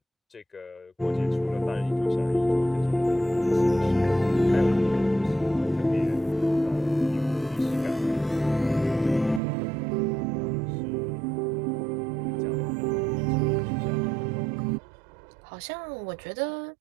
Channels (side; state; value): left; drops out; at 9.4 s